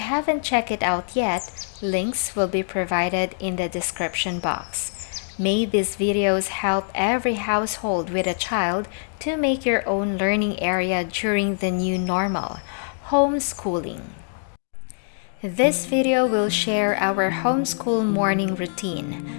haven't checked it out yet, links will be provided in the description box. May these videos help every household with a child to make your own learning area during the new normal, homeschooling. This video will share our homeschool morning routine.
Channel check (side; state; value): right; silent; digital silence